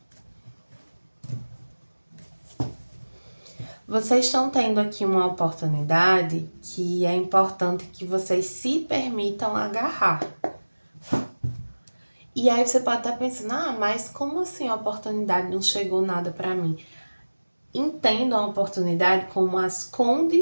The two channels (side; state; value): both; inverted; correlation -1.00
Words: Vocês estão tendo aqui uma oportunidade que é importante que vocês se permitam agarrar. E aí você pode estar pensando, mas como assim a oportunidade não chegou nada para mim? Entendam a oportunidade como as